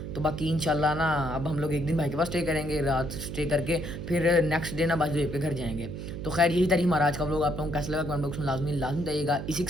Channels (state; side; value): noise; right; hum, 7 dB below the sound